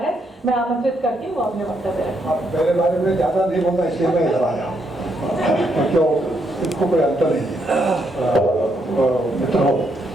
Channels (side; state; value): both; normal; correlation 0.76